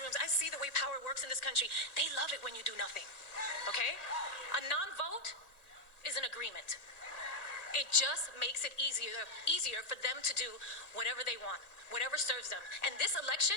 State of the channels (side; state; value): right; late; 1.9 ms